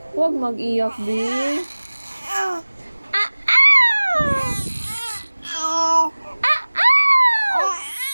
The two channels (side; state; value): both; inverted; correlation -1.00